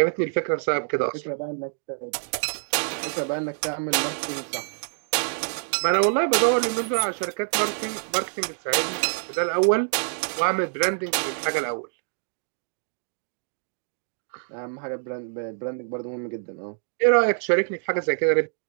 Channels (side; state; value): left; silent; digital silence